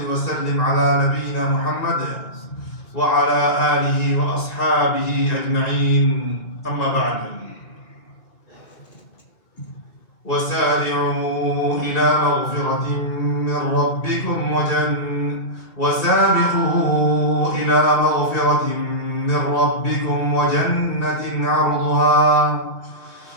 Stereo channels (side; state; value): right; late; 2.3 ms